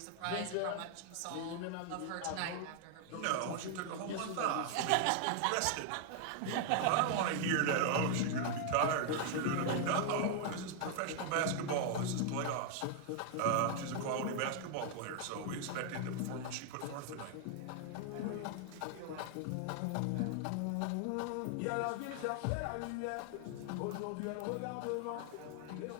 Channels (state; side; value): different; both; correlation 0.00